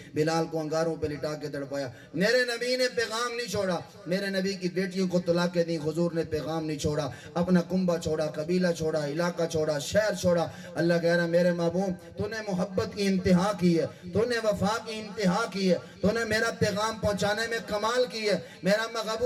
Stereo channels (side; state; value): both; identical; correlation 1.00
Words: بلال کو انگاروں پہ لٹا کے تڑپایا۔ میرے نبی نے پیغام نہیں چھوڑا، میرے نبی کی بیٹیوں کو طلاقیں دیں، حضور نے پیغام نہیں چھوڑا، اپنا کنبہ چھوڑا، قبیلہ چھوڑا، علاقہ چھوڑا، شہر چھوڑا۔ اللہ کہہ رہا میرے محبوب تو نے محبت کی انتہا کی ہے، تو نے وفا کی انتہا کی ہے، تو نے میرا پیغام پہنچانے میں کمال کی ہے، میرا